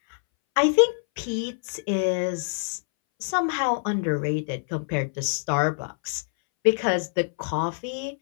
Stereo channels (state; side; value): silent; right; 61 dB below the other